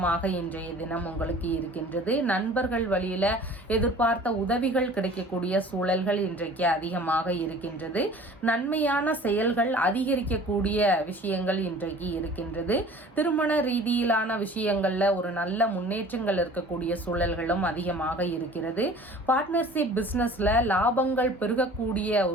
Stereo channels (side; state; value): both; normal; correlation 0.46